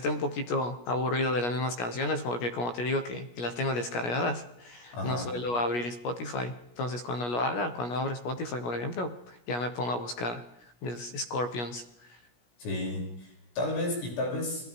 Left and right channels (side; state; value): right; late; 17 ms